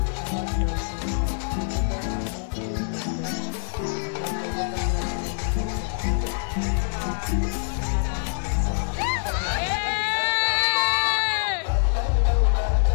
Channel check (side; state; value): right; silent; digital silence